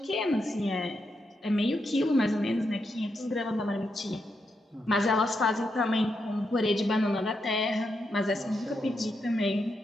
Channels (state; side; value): normal; both; correlation 0.83